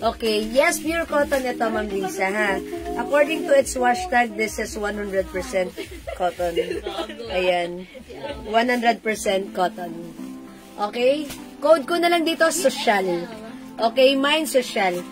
Okay. Yes, pure cotton ito, Ma'am Lisa, ha? According to its wash tag, this is 100% cotton. Ayan. 100% cotton. Okay? Code ko na lang dito, social. Okay, mine social.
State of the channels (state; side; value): identical; both; correlation 1.00